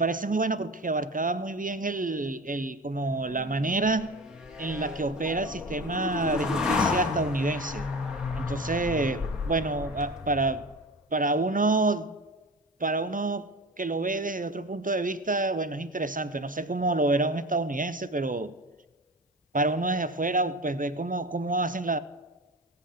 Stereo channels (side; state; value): both; normal; correlation 0.32